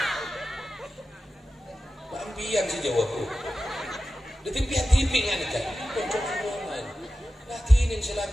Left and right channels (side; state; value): both; normal; correlation 0.94